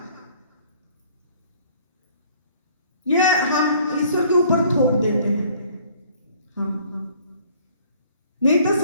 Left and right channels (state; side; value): inverted; both; correlation -0.56